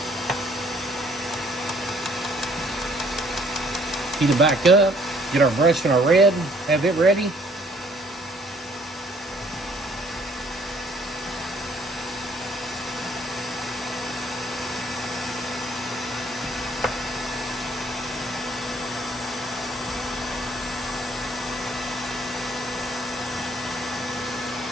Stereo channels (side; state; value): both; normal; correlation 0.62